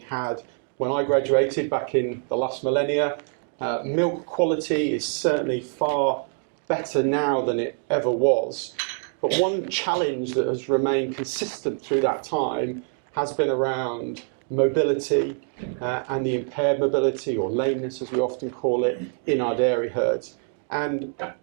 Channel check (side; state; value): left; silent; 55 dB below the other